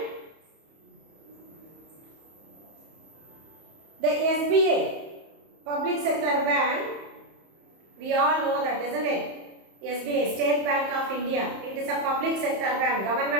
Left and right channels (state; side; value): late; left; 31 ms